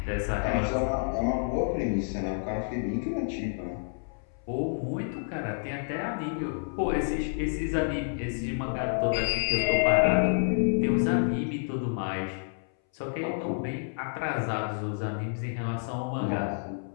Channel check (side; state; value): right; silent; 58 dB below the other